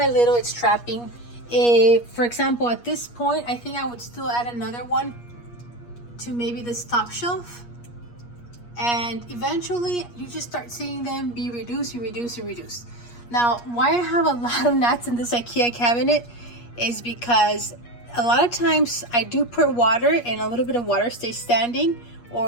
little it's trapping. For example, at this point, I think I would still add another one to maybe this top shelf. And eventually, you just start seeing them be reduced, reduced. Now, why I have a lot of gnats in this IKEA cabinet is because a lot of times I do put water, and a little bit of water stays standing,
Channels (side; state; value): right; late; 8.4 ms